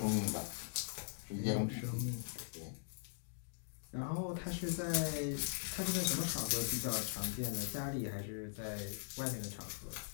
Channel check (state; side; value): silent; right; digital silence